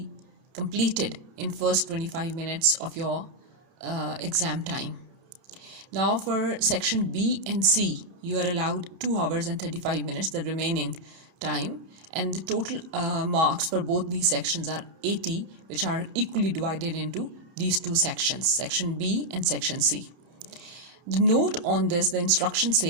completed in first 25 minutes of your exam time. Now for section B and C, you are allowed 2 hours and 35 minutes, the remaining time, and the total marks for both these sections are 80, which are equally divided into these two sections, section B and section C. The note on this, the instruction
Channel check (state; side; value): late; left; 31 ms